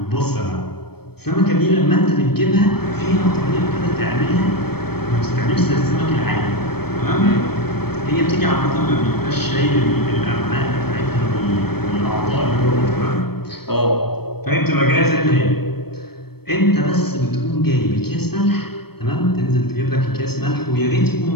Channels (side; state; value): right; late; 0.96 ms